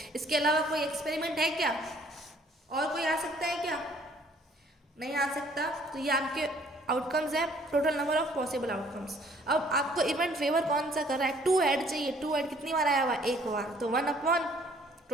इसके अलावा कोई एक्सपेरिमेंट है क्या, और कोई आ सकता है क्या, नहीं आ सकता। तो ये आपके आउटकम्स है, total number of possible outcomes. अब आपको इवेंट फेवर कौन सा कर रहा है, 2 हेड चाहिए। 2 हेड कितनी बार आया हुआ, एक बार, तो 1/,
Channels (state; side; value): normal; both; correlation 0.59